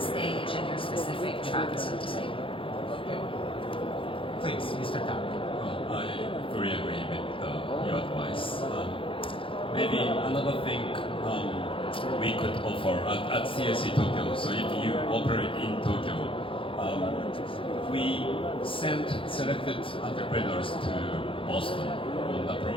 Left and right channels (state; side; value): late; right; 0.25 ms